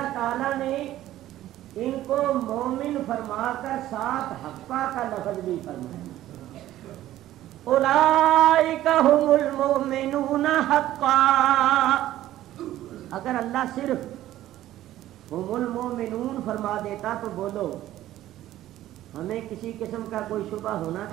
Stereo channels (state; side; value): quieter; left; 13.9 dB